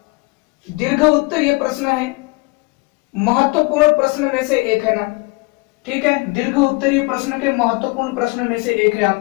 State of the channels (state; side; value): quieter; right; 27.4 dB